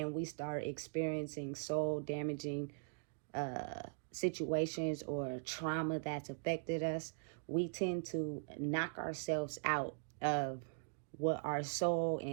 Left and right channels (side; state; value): left; silent; digital silence